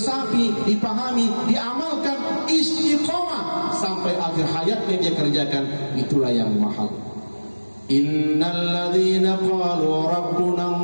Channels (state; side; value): inverted; both; correlation -1.00